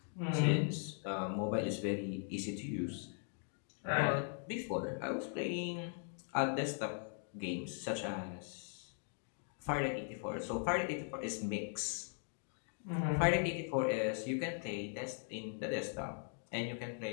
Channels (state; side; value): silent; right; 51 dB below the other